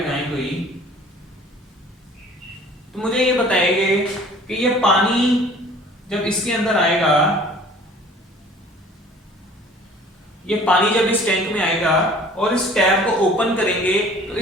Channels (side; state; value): both; normal; correlation 0.49